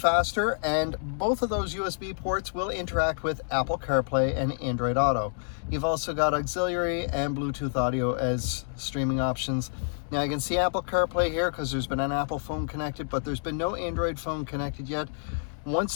and both of those USB ports will interact with Apple CarPlay and Android Auto. You've also got auxiliary and Bluetooth audio as streaming options. Now you can see Apple CarPlay here because there's been an Apple phone connected, but there's been no Android phone connected yet.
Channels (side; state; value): right; silent; digital silence